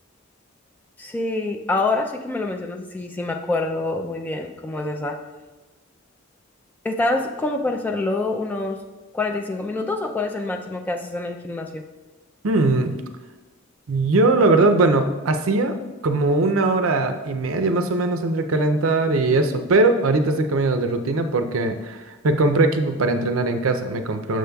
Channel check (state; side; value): normal; both; correlation 0.29